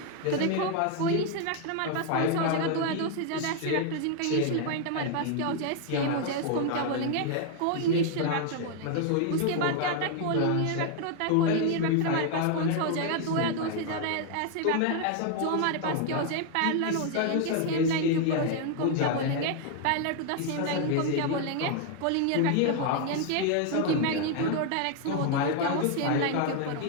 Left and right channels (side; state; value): both; different; correlation 0.00